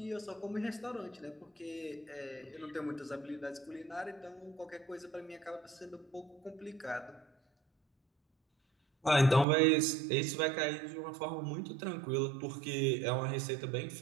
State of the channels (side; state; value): left; drops out; at 9.5 s